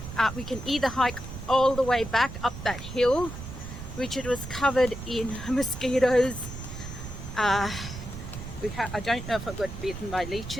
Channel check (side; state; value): right; noise; rumble, 10 dB below the sound